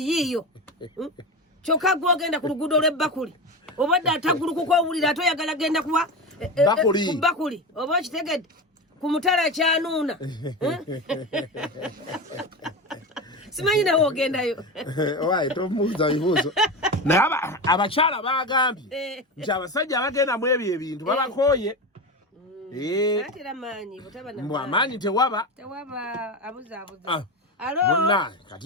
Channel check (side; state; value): both; normal; correlation 0.22